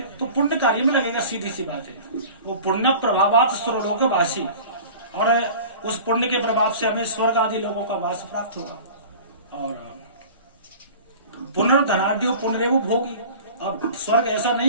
तो पुण्य कार्य में लगेगा, सीधी सी बात है। वो पुण्य प्रभावात स्वर्लोक वासी, और उस पुण्य के प्रभाव से हमें स्वर्ग आदि लोगों का वास प्राप्त होगा। और पुनर्धनाढ्यो पुनरेव भोगी। अब स्वर्ग ऐसा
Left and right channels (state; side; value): inverted; both; correlation -0.40